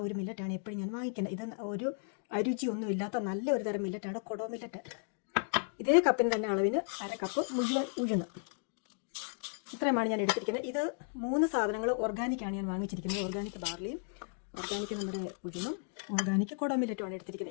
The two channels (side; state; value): right; silent; 55 dB below the other